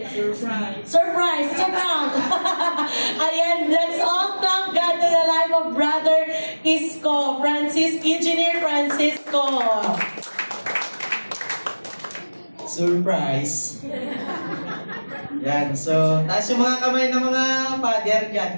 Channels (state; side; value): inverted; both; correlation -1.00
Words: Surprise! Surprise! Surprise! Ayan, let's all thank God to the life of Brother Isko, Engineer Francisco. Surprise! Yan, so, taas yung mga kamay ng mga father